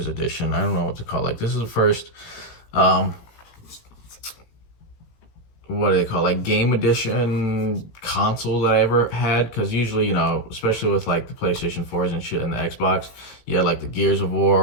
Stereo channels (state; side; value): late; right; 18 ms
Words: edition. I don't know what to call it. Like, this is the first, what do they call it? Like game edition console that I ever had. Cause usually, you know, especially with like the PlayStation 4s and shit and the Xbox, you had like the Gears of